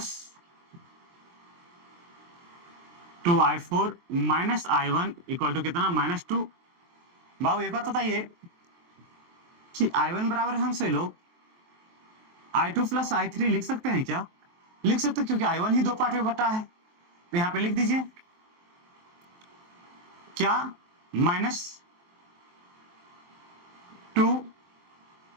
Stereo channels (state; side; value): late; left; 23 ms